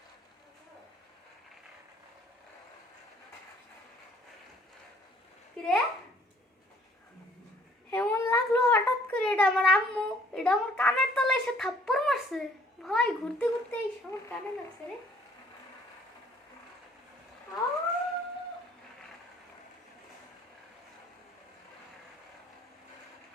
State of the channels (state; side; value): normal; both; correlation 0.59